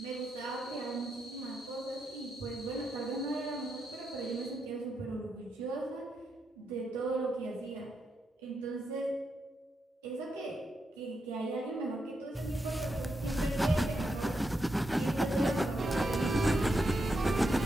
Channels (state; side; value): normal; both; correlation 0.84